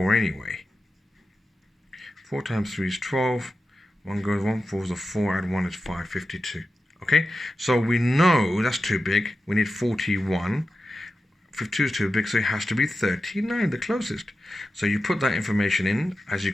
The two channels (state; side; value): normal; both; correlation 0.92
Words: anyway. 4 times 3 is 12. 1 goes 1, 4 is a 4, add 1 is 5, 52. Okay? So we know that's too big. We need 41. 52 is too big, so it has to be 39, the closest. So you put that information in, as you